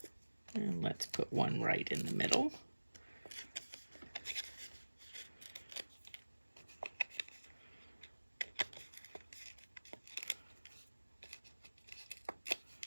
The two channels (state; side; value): inverted; both; correlation -1.00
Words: And let's put one right in the middle.